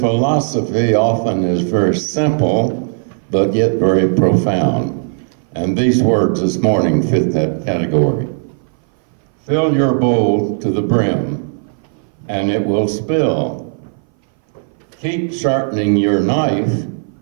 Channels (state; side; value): silent; left; 60 dB below the other